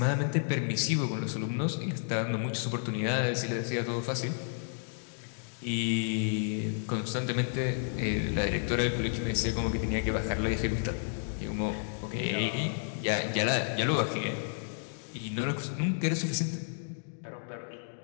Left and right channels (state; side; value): silent; right; digital silence